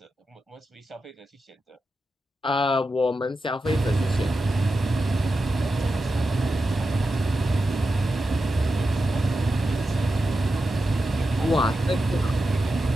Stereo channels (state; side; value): normal; both; correlation 0.90